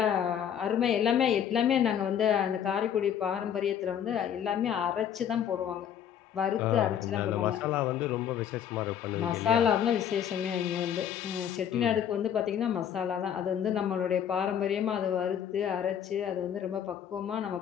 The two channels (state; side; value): quieter; right; 9.1 dB